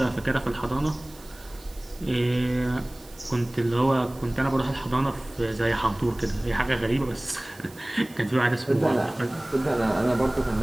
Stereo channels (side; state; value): right; noise; hiss, 24 dB below the sound